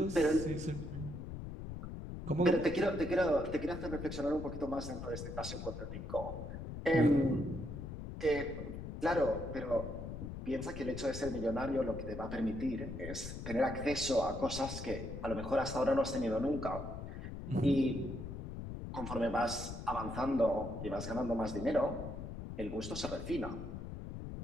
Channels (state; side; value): noise; left; rumble, 8 dB below the sound